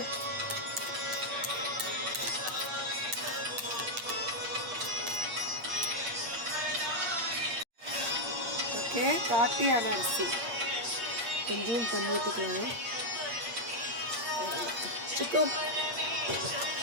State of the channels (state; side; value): late; left; 8.6 ms